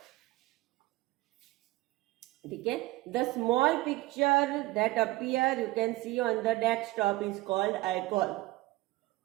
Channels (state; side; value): quieter; left; 19.2 dB